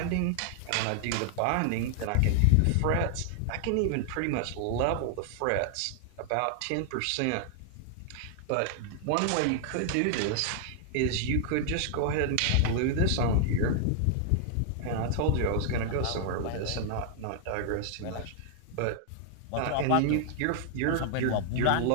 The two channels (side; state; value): both; different; correlation -0.01